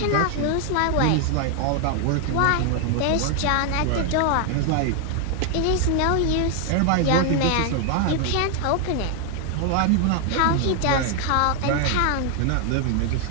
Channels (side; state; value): both; different; correlation 0.00